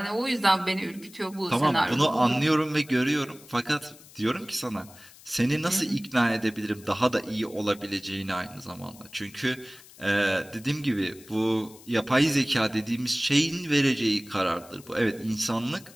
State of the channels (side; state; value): left; noise; hiss, 22 dB below the sound